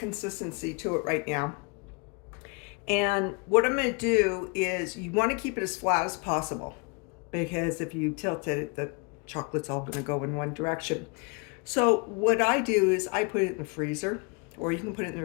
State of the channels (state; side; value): quieter; right; 32.5 dB